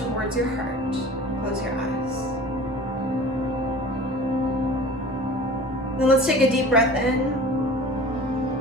your heart. Close your eyes. Then let's take a deep breath in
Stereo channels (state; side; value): normal; both; correlation 0.42